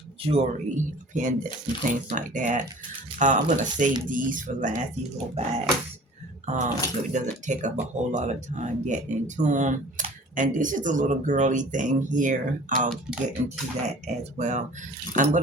jewelry pendants and things like that. I'm gonna save these for last. These little bags, so it doesn't take up a whole lot of time getting into them. And this is a little girly thing here. I'll get into that as well. I'm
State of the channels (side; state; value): both; normal; correlation 0.45